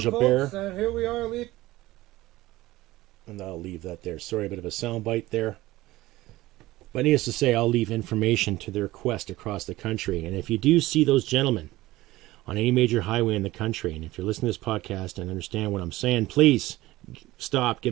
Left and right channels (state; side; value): quieter; left; 17.8 dB